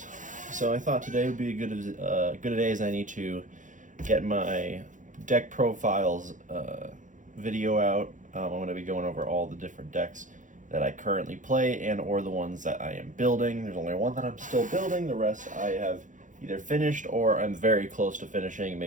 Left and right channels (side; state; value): left; late; 0.37 ms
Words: So I thought today would be good a day as any to get my deck profiles video out. I'm going to be going over all the different decks that I currently play and or the ones that I am building. There's only one that I'm still building. The rest I have either finished or I'm very close to finishing.